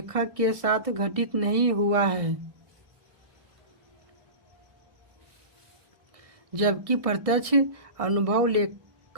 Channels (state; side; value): late; left; 1.6 ms